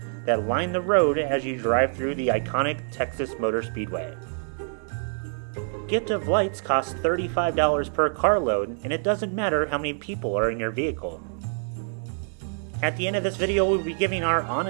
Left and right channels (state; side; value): silent; left; digital silence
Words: that line the road as you drive through the iconic Texas Motor Speedway. Gift of Lights costs $35 per carload, and it doesn't matter how many people are in your vehicle. At the end of this video, we'll be giving our